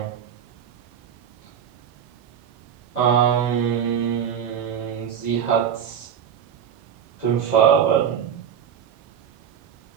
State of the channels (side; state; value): left; quieter; 8.5 dB